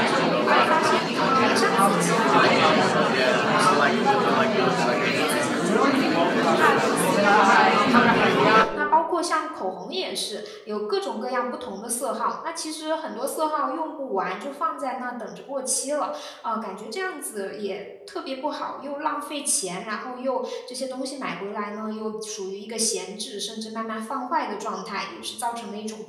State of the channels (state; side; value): identical; both; correlation 1.00